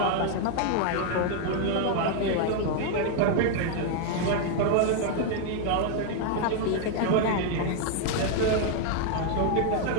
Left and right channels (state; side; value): different; both; correlation 0.00